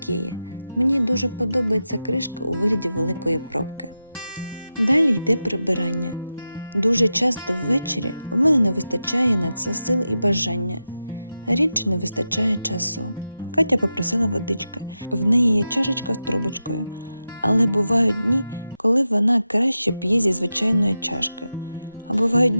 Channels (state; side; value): inverted; both; correlation -0.91